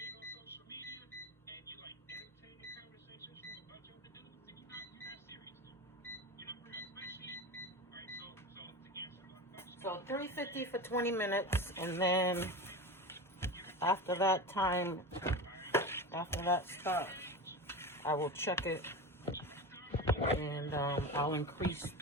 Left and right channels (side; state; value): both; normal; correlation 0.26